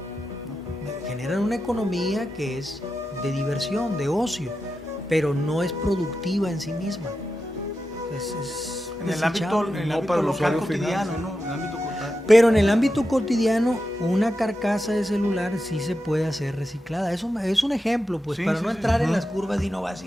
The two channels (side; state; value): both; normal; correlation 0.90